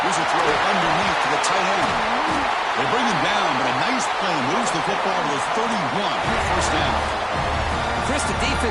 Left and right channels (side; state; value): both; identical; correlation 1.00